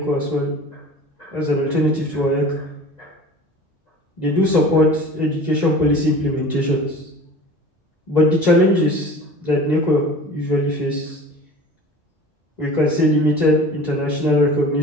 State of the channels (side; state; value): both; normal; correlation 0.40